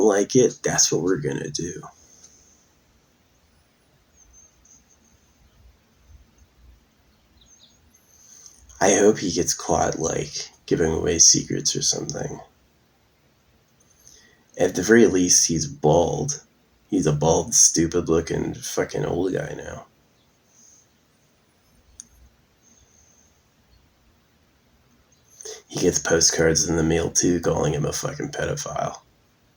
like it, that's what we're gonna do. I hope he gets caught, giving away secrets or something. At the very least, he's bald. He's a bald, stupid-looking fucking old guy now. He gets postcards in the mail, too, calling him a fucking pedophile.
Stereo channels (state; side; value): identical; both; correlation 1.00